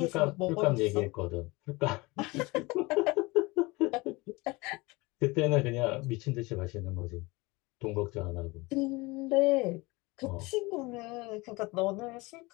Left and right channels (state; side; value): quieter; right; 23.8 dB